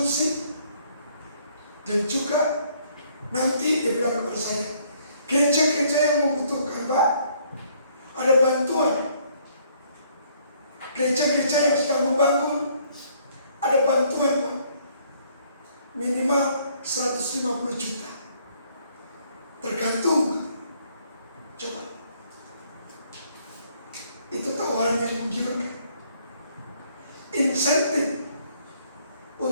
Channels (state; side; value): inverted; both; correlation -0.64